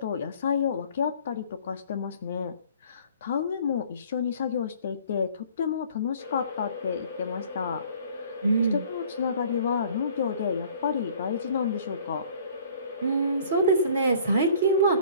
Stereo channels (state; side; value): inverted; both; correlation -0.53